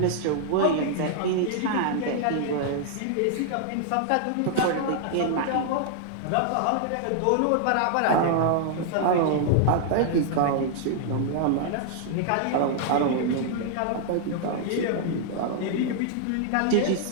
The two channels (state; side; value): different; both; correlation -0.01